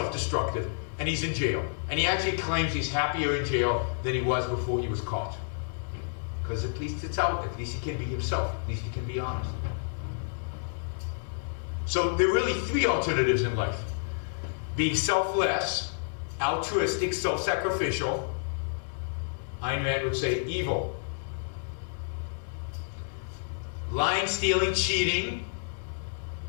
and he's in jail. And he actually claims he's happier in jail than he was before he was caught. Because at least it's out. At least he can be himself. At least he can be honest. So there are really three alternatives in life. Being selfless, altruistic, self-sacrificial. Ayn Rand would say evil. Lying, stealing, cheating,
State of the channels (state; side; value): silent; right; digital silence